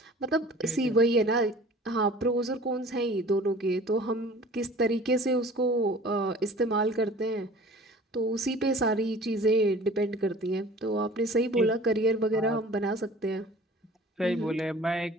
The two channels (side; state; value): both; normal; correlation 0.45